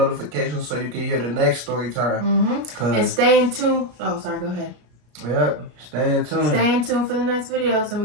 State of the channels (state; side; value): late; left; 33 ms